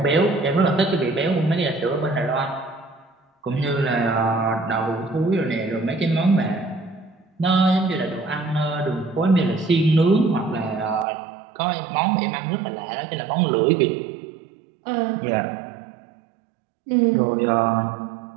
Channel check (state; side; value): drops out; left; at 11.1 s